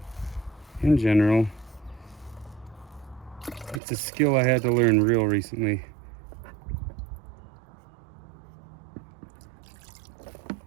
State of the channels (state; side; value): drops out; left; at 3.8 s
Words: in general, it's a skill I had to learn real recently.